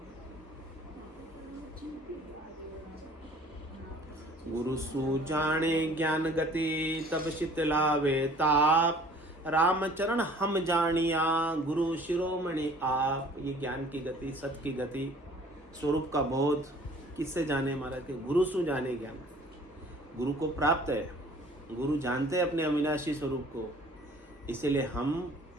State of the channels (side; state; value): both; normal; correlation 0.51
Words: गुरु सु जाने ज्ञान गति तब शीतलावे ताप, राम चरण हम जानिया गुरु शिरोमणि आप। ये ज्ञान की गति, सत की गति, स्वरूप का बोध किससे जाने महाराज के? गुरु सु जाने ज्ञान। गुरु को प्राप्त है, गुरु जानते हैं अपने अविनाशी स्वरूप को, इसीलिए हम